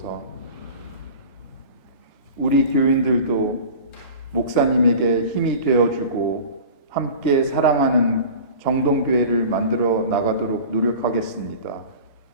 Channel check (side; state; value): both; inverted; correlation -0.38